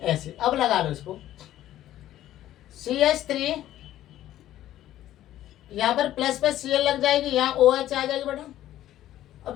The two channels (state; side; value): quieter; right; 13.2 dB